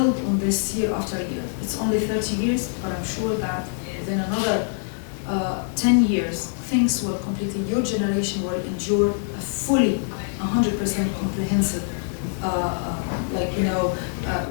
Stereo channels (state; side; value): silent; right; digital silence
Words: on this year after year. It's only 30 years, but I'm sure that within another 10 years, things will completely, your generation will endure a fully 100% comprehensive